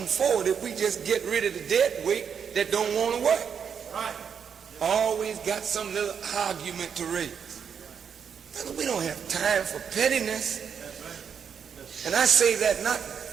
forward if we just get rid of the dead weight that don't want to work. Right. Always got some little argument to raise. We don't have time for pettiness. And I say that not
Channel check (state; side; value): quieter; left; 7.2 dB